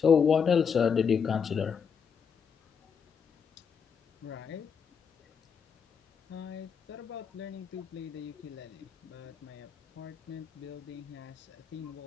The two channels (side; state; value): right; quieter; 6.6 dB